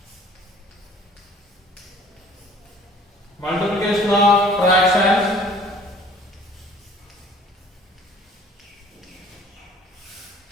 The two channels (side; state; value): both; normal; correlation 0.52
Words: Multiplication of fractions.